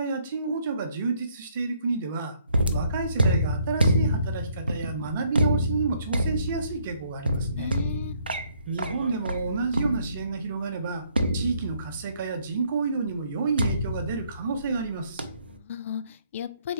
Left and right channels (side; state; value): both; inverted; correlation -0.67